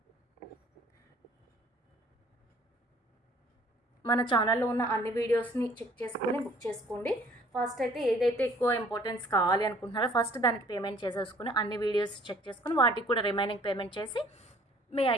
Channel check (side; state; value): both; normal; correlation 0.56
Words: మన ఛానల్లో ఉన్న అన్ని వీడియోస్ని చెక్ చేసుకొని బుక్ చేసుకోండి. ఫస్ట్ అయితే ఏదైతే ఎక్కువ ఇంపార్టెన్స్ కావాలి అనుకుంటున్నారో ఫస్ట్ దానికి పేమెంట్ చేసేసుకుని అన్ని వీడియోస్ చెక్ చేసుకుని వాటికి కూడా రిమైనింగ్ పేమెంట్ చేసి మీ